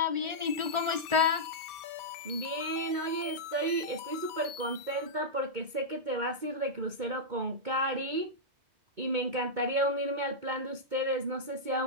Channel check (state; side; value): late; left; 2.2 ms